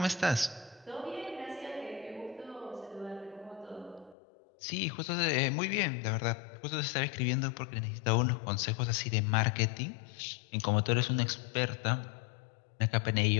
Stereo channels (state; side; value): drops out; right; at 4.2 s